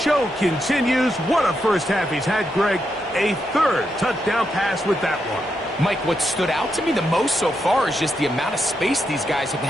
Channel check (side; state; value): both; normal; correlation 0.83